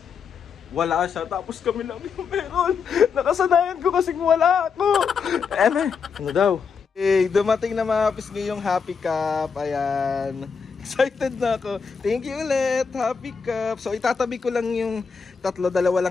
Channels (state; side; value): quieter; right; 5.9 dB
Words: wala siya tapos kami lang yung meron. Nakasanayan ko kasing wala ako. Ano daw? Dumating na mga kapis ngayong Happy Cup. Ayan. Excited na ako. Thank you ulit, Happy Cup. So itatabi ko lang yung tatlo, dalawa